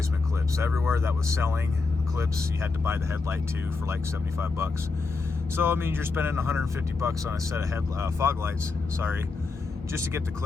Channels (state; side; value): quieter; right; 4.0 dB